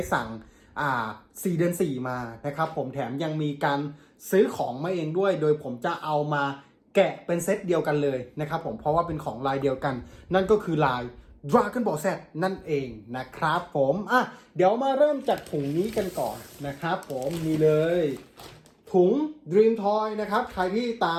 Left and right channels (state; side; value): identical; both; correlation 1.00